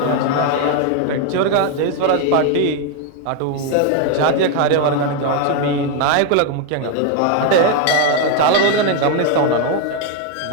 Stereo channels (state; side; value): different; both; correlation 0.01